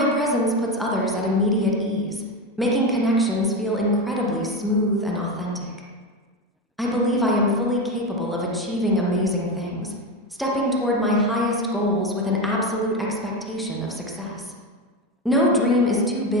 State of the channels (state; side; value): normal; both; correlation 0.17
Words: presence puts others at immediate ease, making connections feel incredibly smooth and authentic. I believe I am fully capable of achieving amazing things, stepping toward my highest goals with an absolute expectation of success. No dream is too